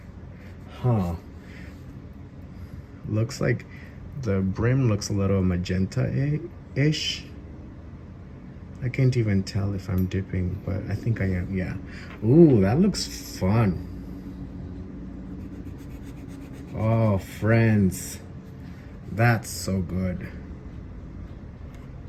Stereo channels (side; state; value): both; identical; correlation 1.00